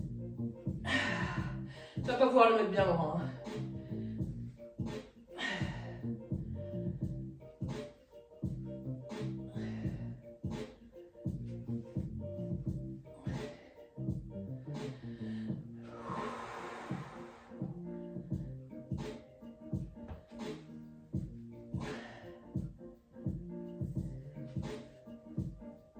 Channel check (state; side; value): identical; both; correlation 1.00